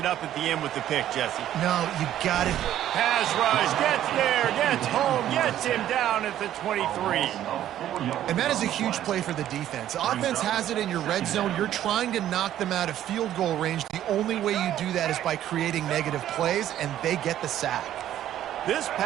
up at the end with the pick, Jesse. No, you got it. Pass rush, gets there, gets home, gets him down at the 23. And that is a huge play for the defense. Offense has it in your red zone. You're trying to knock them out of field goal range. The only way you do that is by creating negative plays, and they get the sack. This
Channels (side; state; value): left; quieter; 11.9 dB